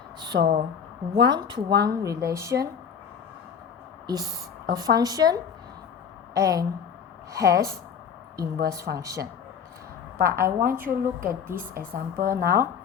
So one-to-one relation is a function and has inverse function. But I want you to look at this example now.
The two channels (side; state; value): right; quieter; 7.2 dB